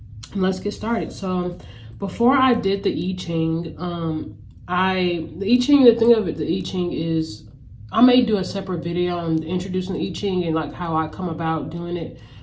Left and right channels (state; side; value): identical; both; correlation 1.00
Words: And let's get started. So before I did the I-Ching, the thing of it, the I-Ching is, I may do a separate video on introducing the I-Ching and like how I come about doing it.